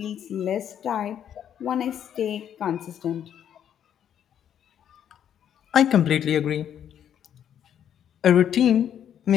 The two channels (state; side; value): quieter; right; 9.5 dB